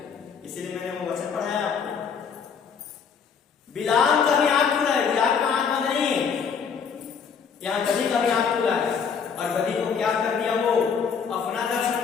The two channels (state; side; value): quieter; right; 6.5 dB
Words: इसीलिए मैंने वो वचन पढ़ाया आपको। बिलाम का भी आंख खुला है, बिलाम का आंख बंद नहीं है। यहाँ गदही का भी आंख खुला है, और गदही को क्या कर दिया? वो अपना दर्शन